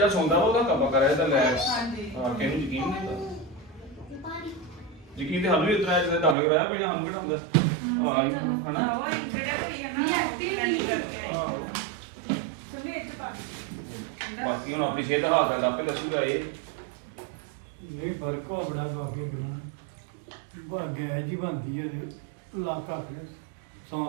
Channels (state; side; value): drops out; left; at 6.4 s